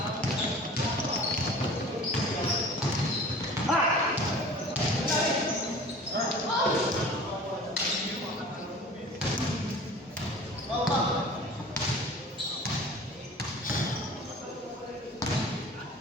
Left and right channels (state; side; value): normal; both; correlation 0.43